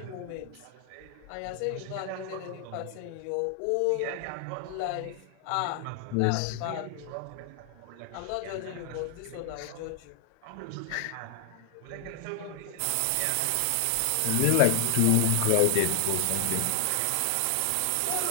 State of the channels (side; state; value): both; different; correlation 0.00